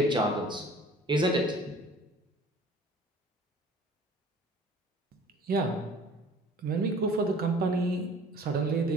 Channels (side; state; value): both; normal; correlation 0.48